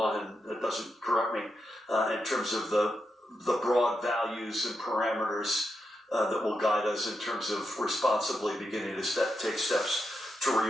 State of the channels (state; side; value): normal; both; correlation 0.85